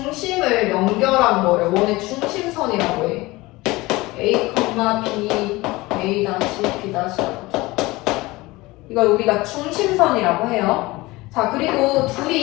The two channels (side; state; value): right; quieter; 20.9 dB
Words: 연결한 거를 원의 중심선이라고 해. A, B, A-, B-. 이걸 우리가 중심선이라고 해요. 자, 그리고